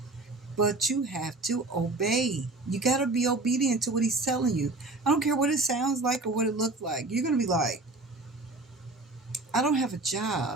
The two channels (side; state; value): left; quieter; 3.2 dB